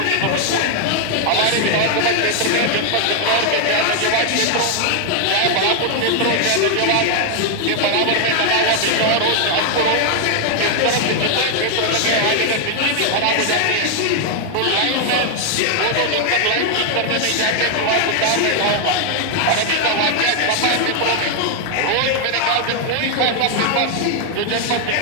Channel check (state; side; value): different; both; correlation 0.00